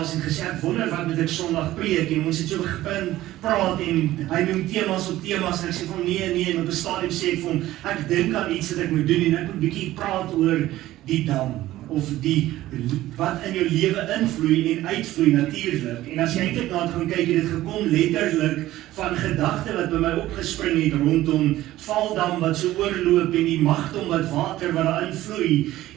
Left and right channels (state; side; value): quieter; left; 15.4 dB